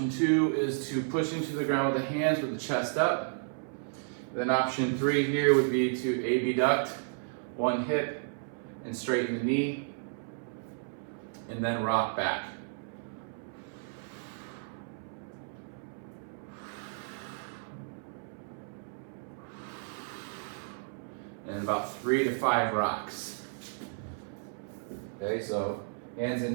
2 is to push into the ground with the hands with the chest up. Then option 3 here would be to abduct one hip and straighten the knee, and then rock back. And about 3 to 5 rocks. Okay, so hands and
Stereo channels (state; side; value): silent; left; 56 dB below the other